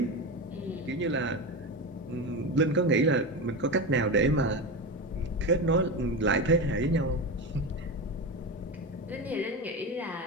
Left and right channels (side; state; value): both; normal; correlation 0.20